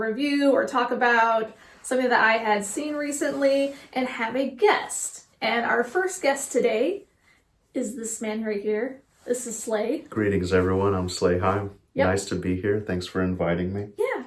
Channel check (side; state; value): both; identical; correlation 1.00